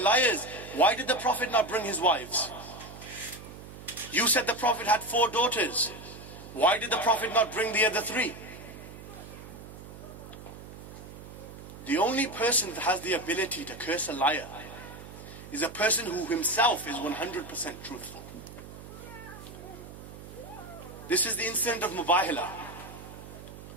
why did the Prophet not bring his wives? You said the Prophet had 4 daughters. Why did the Prophet not bring the other 3? The only person that has the ability to curse a liar is a person who himself is 100% truthful. This is the incident of Mubahila.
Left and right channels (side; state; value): right; noise; hum, 14 dB below the sound